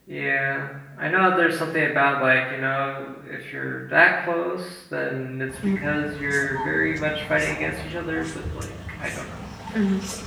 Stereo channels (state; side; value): identical; both; correlation 1.00